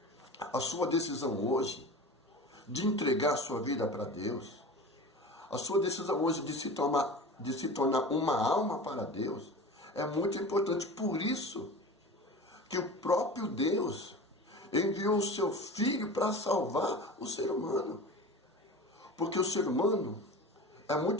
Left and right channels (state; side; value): normal; both; correlation 0.34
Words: a sua decisão hoje de entregar a sua vida para Deus, a sua decisão hoje de se tornar uma alma para Deus, é muito importante. Por isso que o próprio Deus enviou o seu Filho para salvar o ser humano. Porque o ser humano é